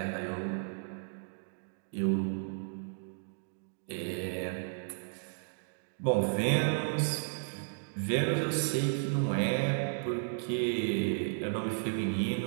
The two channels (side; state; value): left; silent; digital silence